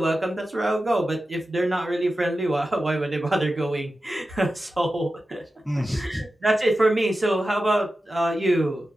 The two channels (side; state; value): both; normal; correlation 0.93